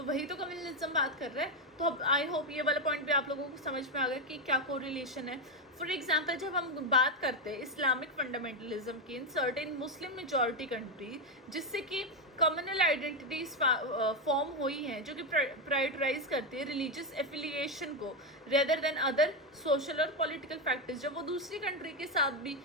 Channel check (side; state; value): both; normal; correlation 0.08